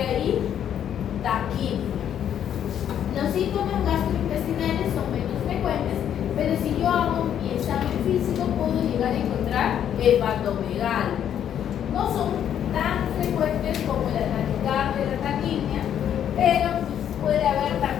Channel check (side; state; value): right; quieter; 9.7 dB